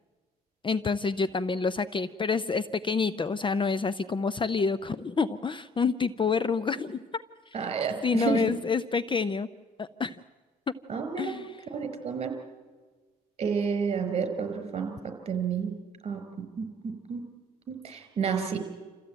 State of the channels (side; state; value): both; normal; correlation 0.58